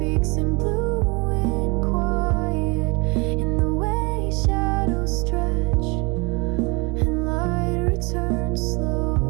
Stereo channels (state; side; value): quieter; left; 28.3 dB